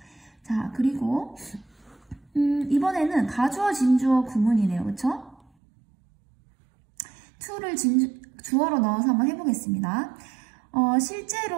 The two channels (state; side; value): drops out; left; at 5.5 s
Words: 자, 그리고 이번에는 가주어, 진주어 구문이네요. 그쵸? to를 주어로 넣어서 한번 해보겠습니다.